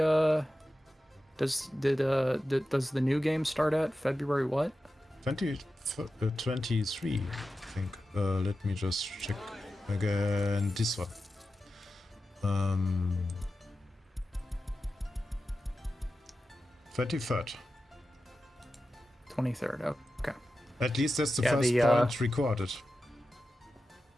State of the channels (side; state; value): both; normal; correlation 0.92